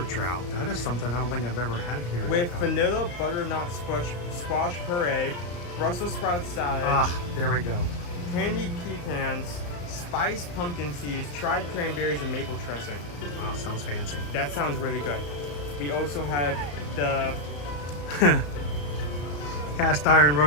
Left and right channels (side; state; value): right; late; 34 ms